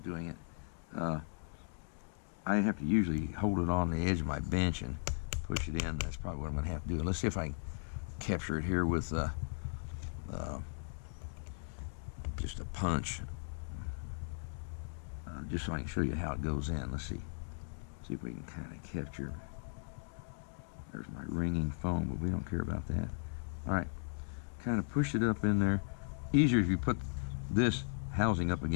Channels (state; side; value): silent; right; digital silence